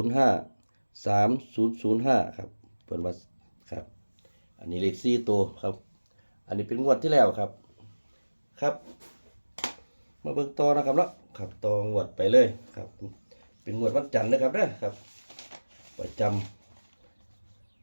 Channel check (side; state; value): both; inverted; correlation -1.00